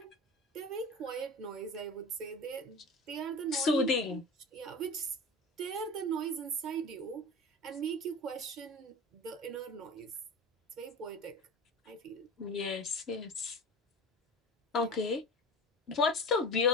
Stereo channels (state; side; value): normal; both; correlation 0.33